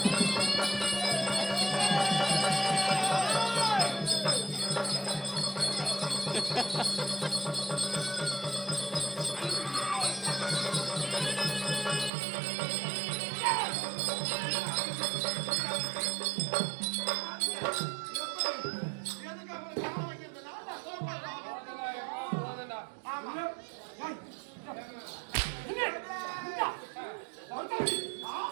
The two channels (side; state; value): left; drops out; at 12.1 s